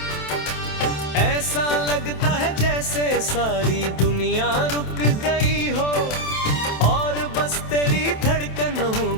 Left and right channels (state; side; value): late; right; 27 ms